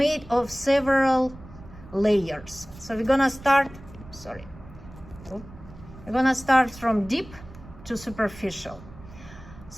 of several layers. So we're gonna start, we're gonna start from deep to superficial.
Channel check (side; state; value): right; noise; rumble, 18 dB below the sound